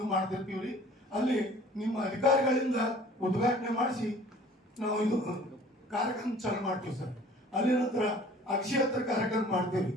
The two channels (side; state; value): both; normal; correlation 0.50